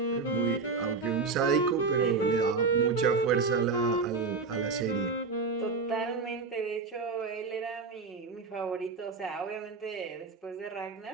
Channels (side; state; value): left; quieter; 4.5 dB